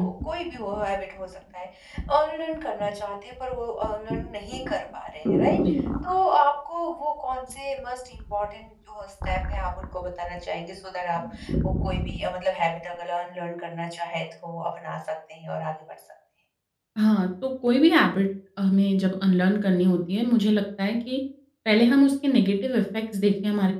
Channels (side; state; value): both; identical; correlation 1.00